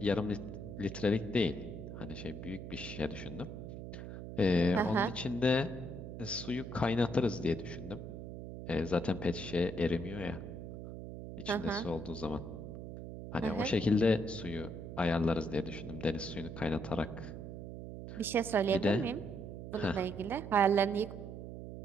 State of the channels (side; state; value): right; noise; hum, 9 dB below the sound